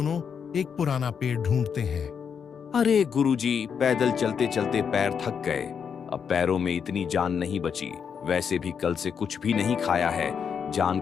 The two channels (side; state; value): right; quieter; 7.0 dB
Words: एक पुराना पेड़ ढूंढते हैं। अरे गुरुजी, पैदल चलते चलते पैर थक गए। अब पैरों में इतनी जान नहीं बची। वैसे भी कल से कुछ भी नहीं खाया है, जान